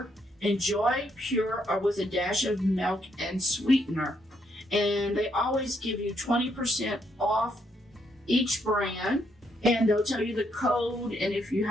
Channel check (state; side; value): normal; both; correlation 0.75